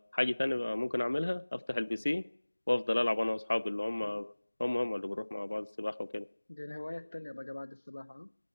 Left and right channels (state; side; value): inverted; both; correlation -1.00